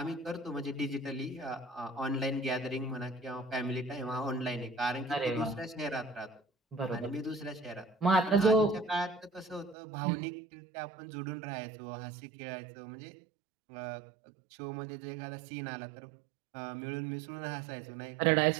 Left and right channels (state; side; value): drops out; left; at 9.8 s